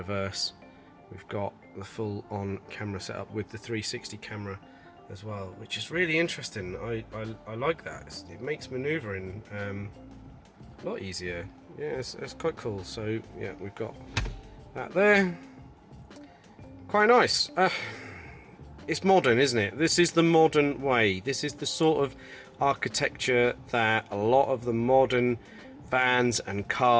We've got the full on camera setup with the 360 camera as well, which is really interesting. I like that. It makes manoeuvring a lot easier. Yeah, it's quite cool. So yeah, we've got that there. quite nice. It's modern, isn't it? This is the modern way. This is the sort of architecture that a lot of the modern vans and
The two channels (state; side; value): identical; both; correlation 1.00